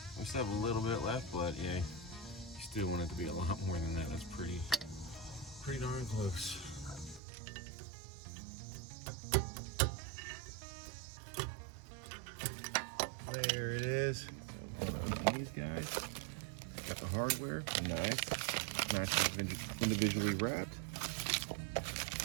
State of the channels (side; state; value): left; drops out; at 7.2 s